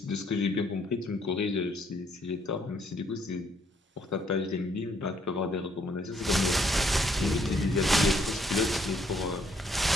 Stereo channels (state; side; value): normal; both; correlation 0.68